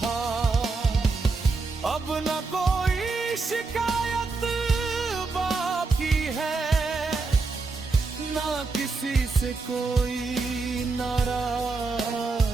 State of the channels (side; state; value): left; quieter; 4.0 dB